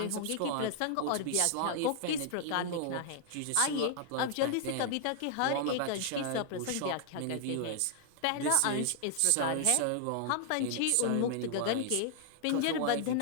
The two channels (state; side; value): different; both; correlation 0.00